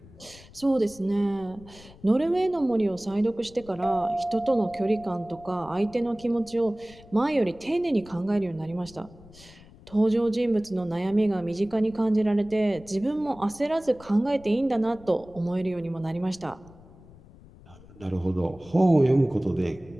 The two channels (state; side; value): noise; left; rumble, 22 dB below the sound